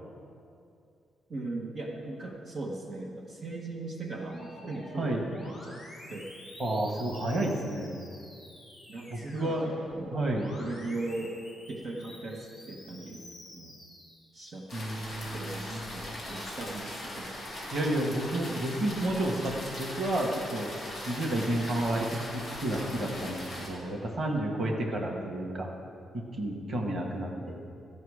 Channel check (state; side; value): normal; both; correlation 0.78